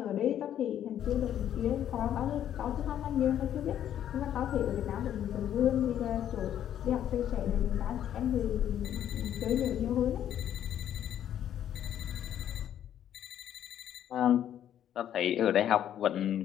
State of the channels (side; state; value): right; quieter; 10.5 dB